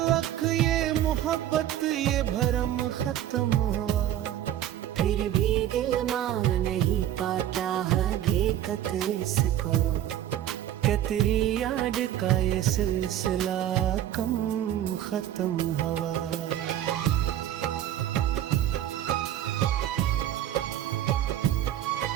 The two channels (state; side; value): quieter; left; 11.9 dB